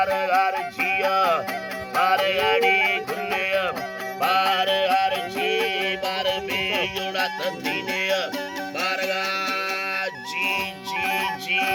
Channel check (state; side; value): identical; both; correlation 1.00